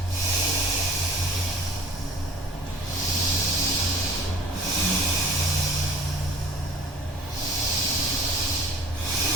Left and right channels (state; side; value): normal; both; correlation 0.48